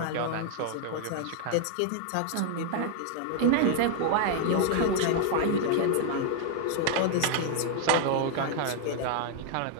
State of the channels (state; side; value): different; both; correlation 0.00